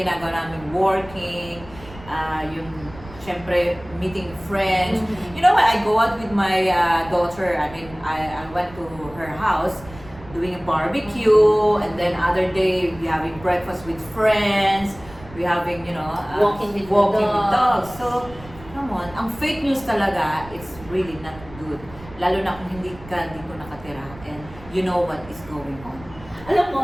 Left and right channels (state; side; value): noise; right; rumble, 18 dB below the sound